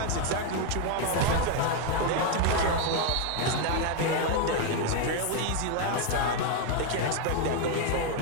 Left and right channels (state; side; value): different; both; correlation 0.01